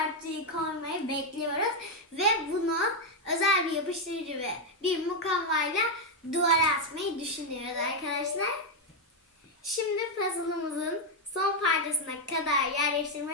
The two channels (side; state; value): both; normal; correlation 0.02